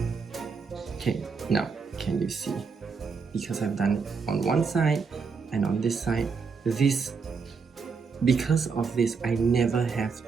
Okay, now can you see? Because I've done it on one side and on this side, because of this, I never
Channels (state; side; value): quieter; left; 5.2 dB